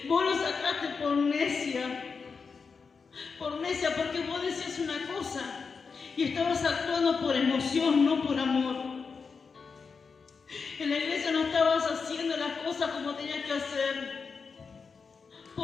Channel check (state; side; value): quieter; right; 5.2 dB